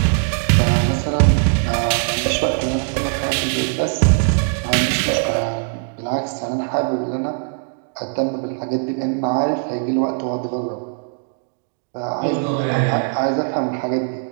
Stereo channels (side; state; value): left; silent; digital silence